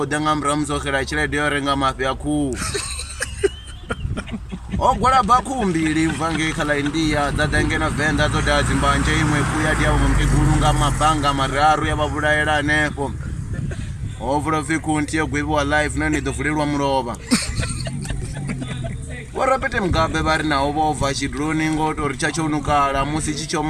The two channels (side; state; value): both; identical; correlation 1.00